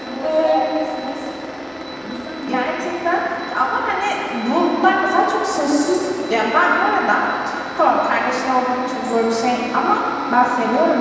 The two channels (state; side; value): identical; both; correlation 1.00